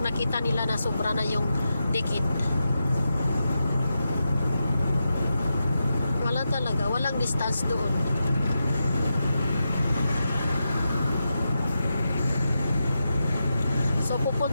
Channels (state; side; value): inverted; both; correlation -0.88